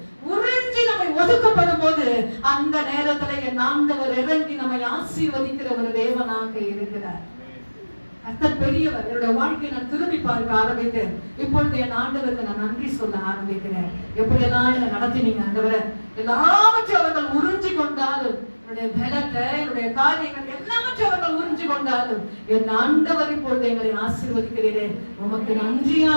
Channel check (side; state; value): both; inverted; correlation -1.00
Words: உறிஞ்சி நம்மை ஒதுக்கப்படும் போது, அந்த நேரத்துல என் ஆண்டவர் இறங்கி நம்மை ஆசீர்வதிக்கிற ஒரு தேவனாக இருக்கிறார். கர்த்தர் பெரியவர். என்னுடைய வாழ்க்கையை நான் திரும்பி பார்க்க ஆரம்பித்தேன். இப்பொழுது என் ஆண்டவருக்கு நான் நன்றி சொல்ல ஆரம்பிக்கிறேன். எப்படியெல்லாம் என்னை நடத்தினீங்க ஆண்டவரே. எல்லாவற்றையும் அவர்கள் உறிஞ்சி கொண்டாலும், என்னுடைய பலத்தை, என்னுடைய காரியங்கள் எல்லாவற்றையும் அவர்கள் உறிஞ்சி கொண்டாலும், என் ஆண்டவர் இப்பொழுது எங்களை ஆசீர்வதிக்கிறீரே, உமக்கு நன்றி